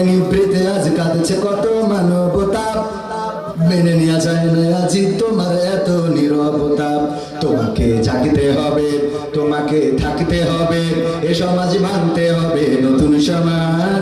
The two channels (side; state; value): both; identical; correlation 1.00